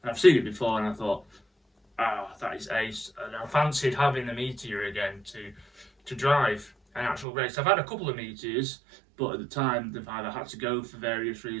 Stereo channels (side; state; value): left; drops out; at 7.2 s